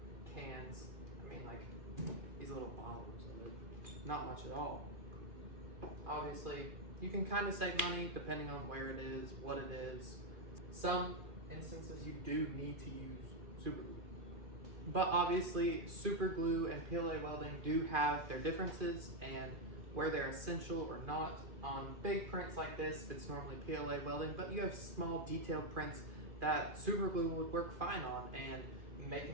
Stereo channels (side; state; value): left; late; 2.4 ms